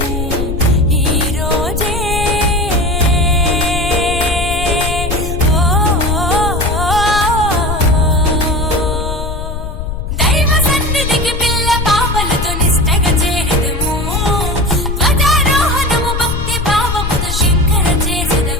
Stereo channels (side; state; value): left; noise; rumble, 5 dB below the sound